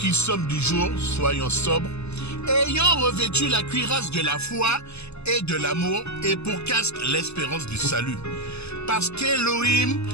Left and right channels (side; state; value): right; late; 0.80 ms